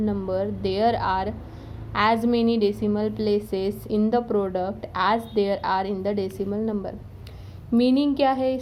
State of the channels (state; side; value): identical; both; correlation 1.00